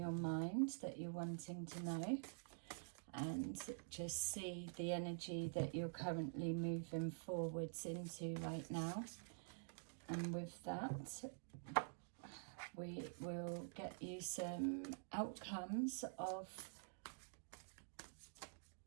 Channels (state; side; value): silent; left; digital silence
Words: mind that you're wanting to know and just see the energy that you're currently moving forwards into right now. And with that, we will get you some outcomes of